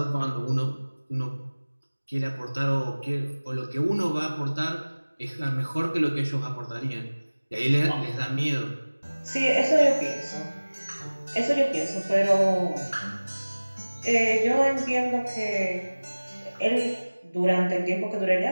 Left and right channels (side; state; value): both; inverted; correlation -1.00